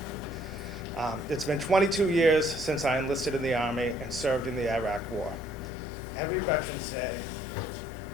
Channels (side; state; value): right; drops out; at 5.7 s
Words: It's been 22 years since I enlisted in the Army and served in the Iraq War. Every Veterans Day